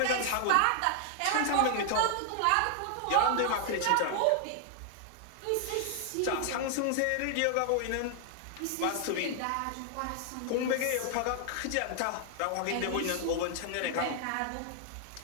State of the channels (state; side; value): different; both; correlation 0.00